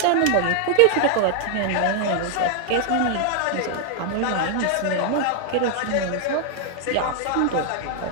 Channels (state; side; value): different; both; correlation 0.00